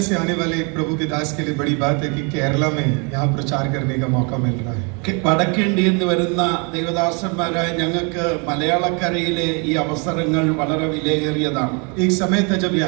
से आने वाले एक प्रभु के दास के लिए बड़ी बात है कि केरला में यहाँ प्रचार करने का मौका मिल रहा है. വടക്കേണ്ടിയിൽ നിന്ന് വരുന്ന ദൈവദാസന്മാരായ ഞങ്ങൾക്ക് മലയാളക്കരയിലെ ഈ അവസരങ്ങൾ വളരെ വിലയേറിയതാണ്. एक समय था जब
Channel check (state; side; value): quieter; left; 34.1 dB